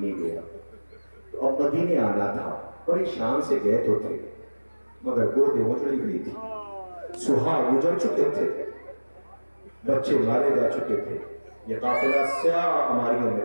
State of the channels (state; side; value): inverted; both; correlation -1.00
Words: گیا۔ تو اب مدینے آنا تھا، بڑی شان سے گئے تو تھے، مگر گودیں اجڑی ہوئی تھی، سہاگ گزر چکے تھے، بچے مارے جا چکے تھے۔ یہ قافلہ سیاہ ہماریوں میں